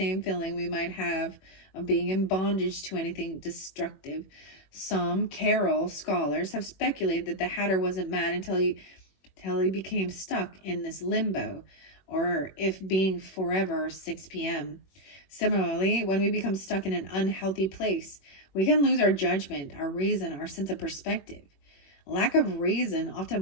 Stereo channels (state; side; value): late; right; 21 ms